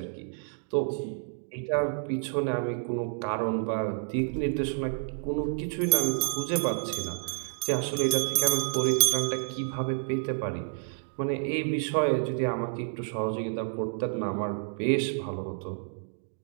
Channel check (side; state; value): left; silent; digital silence